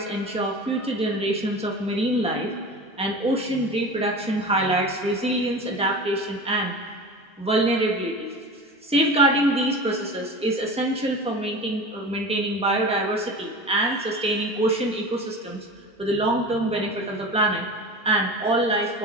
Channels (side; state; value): both; normal; correlation 0.33